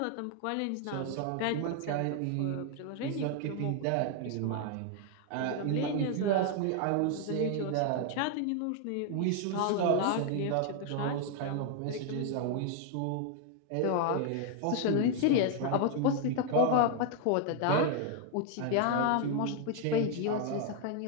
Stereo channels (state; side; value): different; both; correlation 0.00